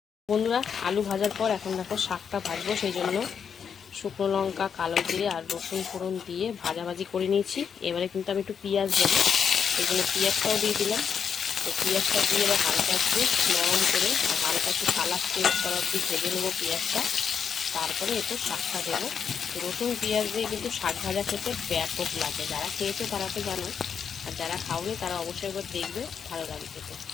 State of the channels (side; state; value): right; quieter; 7.1 dB